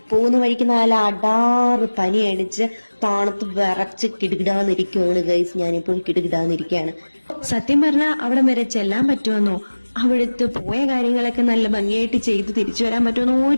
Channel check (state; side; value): inverted; both; correlation -1.00